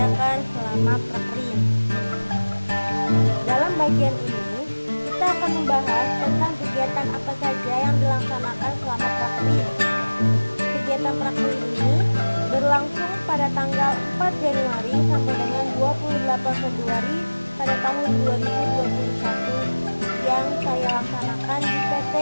selama prakrim. Dalam bagian ini, kita akan membahas tentang kegiatan apa saja yang dilaksanakan selama prakrim. Kegiatan prakrim ini berlangsung pada tanggal 4 Januari sampai dengan 28 Februari pada tahun 2021 yang saya laksanakan di PT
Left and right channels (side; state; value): both; inverted; correlation -1.00